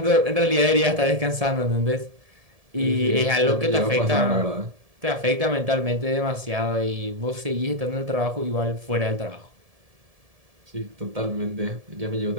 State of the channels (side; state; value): left; late; 1.7 ms